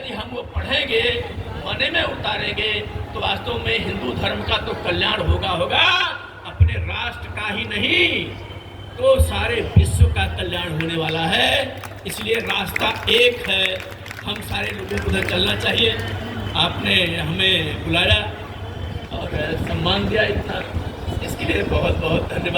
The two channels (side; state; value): both; identical; correlation 1.00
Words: हम वो पढ़ेंगे, मने में उतारेंगे, तो वास्तव में हिंदू धर्म का तो कल्याण होगा, अपने राष्ट्र का ही नहीं तो सारे विश्व का कल्याण होने वाला है। इसलिए रास्ता एक है, हम सारे लोगों को उधर चलना चाहिए। आपने हमें बुलाया और सम्मान दिया इतना, इसके लिए बहुत बहुत